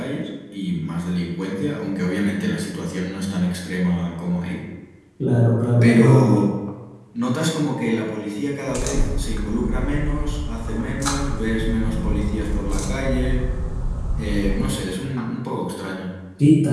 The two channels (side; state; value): both; identical; correlation 1.00